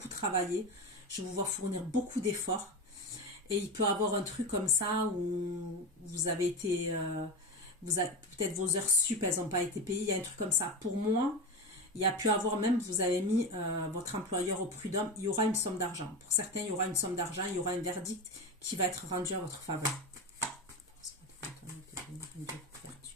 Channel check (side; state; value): both; normal; correlation 0.21